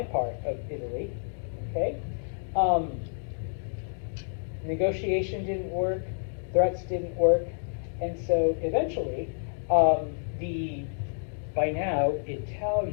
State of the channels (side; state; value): right; silent; digital silence